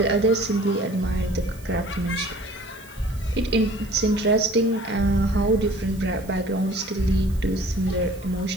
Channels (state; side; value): noise; right; hiss, 23 dB below the sound